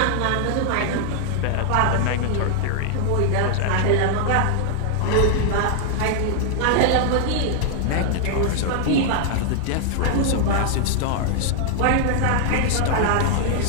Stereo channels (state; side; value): different; both; correlation 0.00